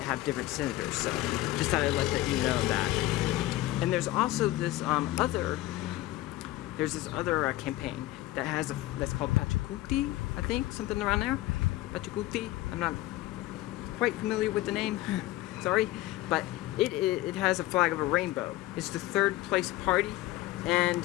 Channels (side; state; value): right; quieter; 16.7 dB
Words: have different senators, so just thought I'd let you know that. And there's also this other campaign that that's called Pachacuti, I think, something around there. Pachacuti. I'm not quite familiar with the name, sorry, but it has a flag of a rainbow. It's the third place party, and